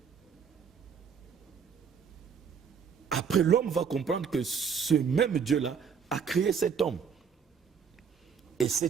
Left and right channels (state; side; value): quieter; left; 6.6 dB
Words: après l'homme va comprendre que ce même Dieu-là a créé cet homme. Et